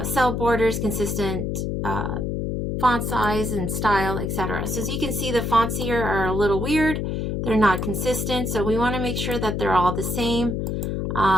cell borders, consistent font size and style, etc. So as you can see, the fonts here are a little weird. They're not consistent, so we want to make sure that they're all the same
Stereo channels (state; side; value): noise; left; hum, 1 dB below the sound